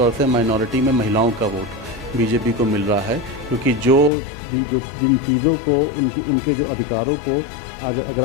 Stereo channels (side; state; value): right; drops out; at 4.1 s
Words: से माइनॉरिटी में महिलाओं का वोट बीजेपी को मिल रहा है, क्योंकि जिन चीज़ों को उनके जो अधिकारों को आज